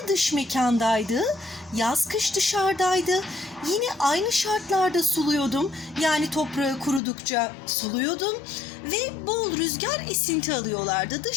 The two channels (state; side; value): drops out; right; at 7.0 s